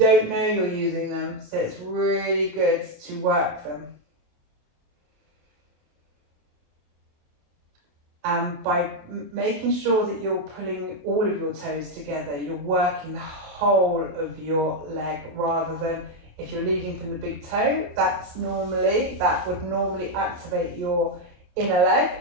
know you're using them. So it's really good to work them. By making sure that you're pulling all of your toes together, you're working the whole of your leg, rather than if you're leading from the big toe, that would normally activate your inner leg,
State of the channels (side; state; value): left; late; 28 ms